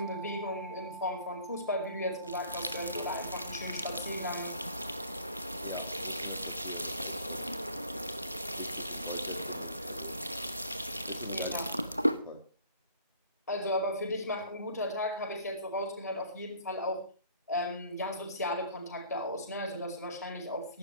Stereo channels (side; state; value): both; inverted; correlation -0.54